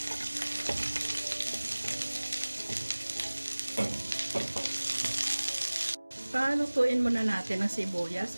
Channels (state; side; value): inverted; both; correlation -1.00